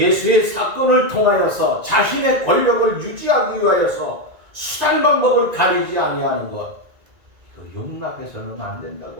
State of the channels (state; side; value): late; left; 1.9 ms